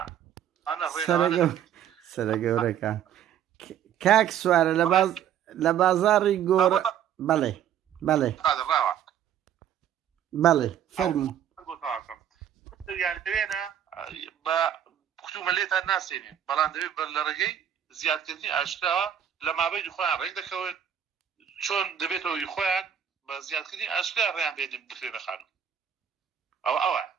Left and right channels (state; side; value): quieter; left; 9.5 dB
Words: سەرە گەورەکان کاک سوارە لە بازاڕی گۆڕە بەڵێ فەرموو دەوێنە بە کوتومە لێتان ناسێنین بەڵام دەوێت بەر لە ڕێگەی زیادکردنی ئاشکراوە لە مابەی خۆیان ڕێک دەکەوێت چۆن دەبێتەوەی خۆیان بە زیادکردنی ئاشکرا ڕێیان بێنن بخرێنە خانوو ئەوە